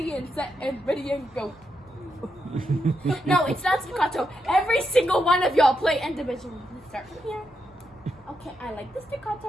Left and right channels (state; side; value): noise; right; hum, 28 dB below the sound